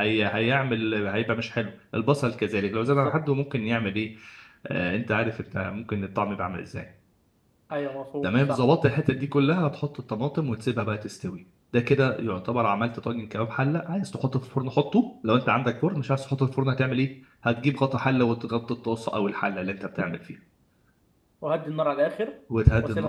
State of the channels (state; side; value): identical; both; correlation 1.00